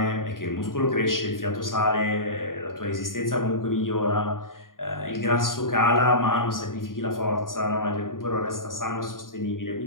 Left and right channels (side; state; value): right; late; 0.90 ms